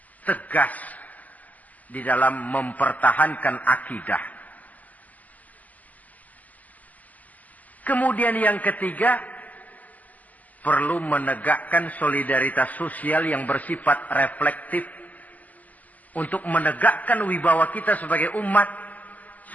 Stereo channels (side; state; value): right; late; 0.078 ms